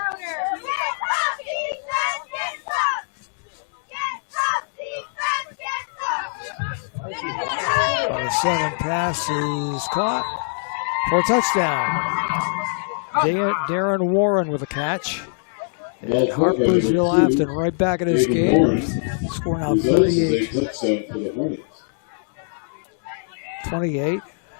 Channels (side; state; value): right; silent; digital silence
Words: On the 7 pass is caught for a touchdown. Darren Warren with a catch. And Harpursville Afton right back in this game. Scoring out 38-28.